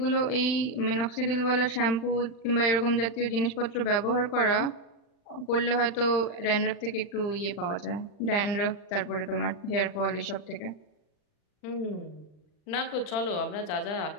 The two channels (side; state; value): right; late; 40 ms